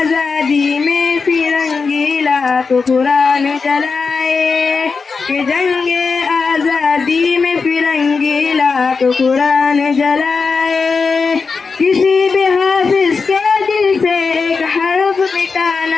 में फिरंगी लाख कुरान जलाए, के जंग आजादी में फिरंगी लाख कुरान जलाए। किसी भी हाफिज के दिल से एक हर्फ मिटा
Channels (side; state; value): right; quieter; 4.8 dB